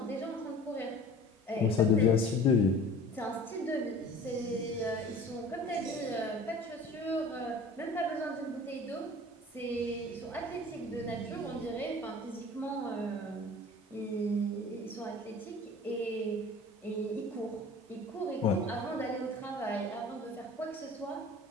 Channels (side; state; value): both; normal; correlation 0.44